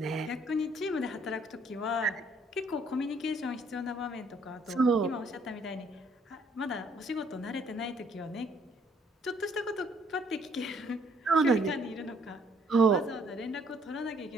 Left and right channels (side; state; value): both; normal; correlation 0.64